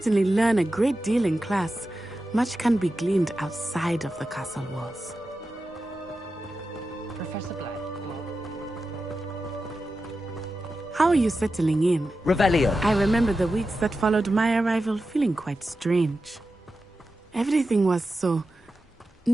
learn a great deal in class, much can be gleaned outside of the castle walls. Professor Black. How are you settling in? Revelio. I remember the weeks that followed my arrival feeling quite strange. Everything was so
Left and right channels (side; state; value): both; normal; correlation 0.91